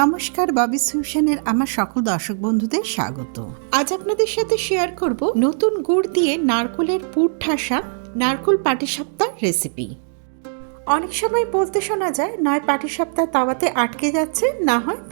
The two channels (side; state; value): left; silent; digital silence